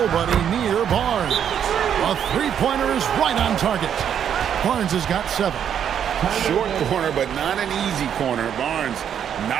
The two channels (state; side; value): quieter; left; 8.8 dB